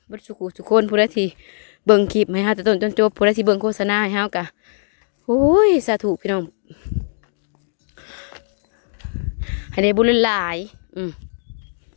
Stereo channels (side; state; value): right; silent; digital silence